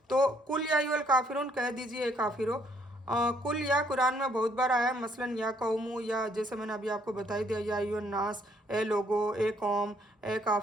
तो कुल या अय्युहल काफिरून कह दीजिए काफिरो। कुल या कुरान में बहुत बार आया है, मसलन या कौमू, या जैसे मैंने अभी आपको बता ही दिया, या अय्युहन नास, ए लोगो, ए कौम, ए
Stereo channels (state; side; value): normal; both; correlation 0.67